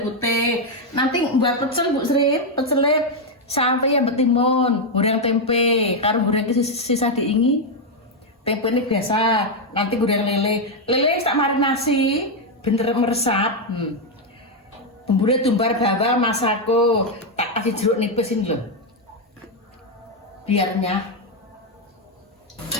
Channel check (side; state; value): both; normal; correlation 0.02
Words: putih. Nanti buat pecel Bu Sri, pecelnya sampai yang betimun, goreng tempe, karo goreng sisa diingi. Tempe ini biasa, nanti goreng lele. Lele tak marinasi, bener meresap. Bumbunya tumbar bawang masako, tak kasih jeruk nipis ini loh, biarnya.